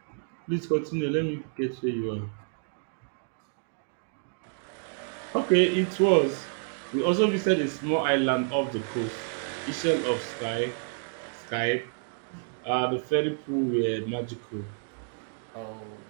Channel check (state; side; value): silent; left; 58 dB below the other